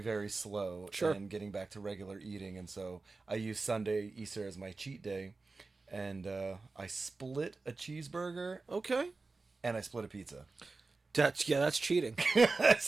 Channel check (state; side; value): quieter; left; 3.8 dB